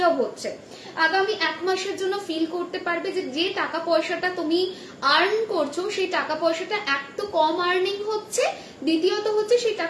হচ্ছে। আগামী 1 মাসের জন্য ফিল করতে পারবে যে টাকা পয়সাটা তুমি আর্ন করছো সেই টাকা পয়সাটা এক তো কম আর্নিং হচ্ছে, দ্বিতীয়ত হচ্ছে সেই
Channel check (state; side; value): identical; both; correlation 1.00